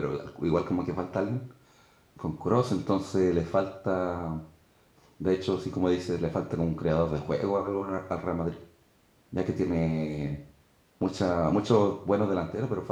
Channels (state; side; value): identical; both; correlation 1.00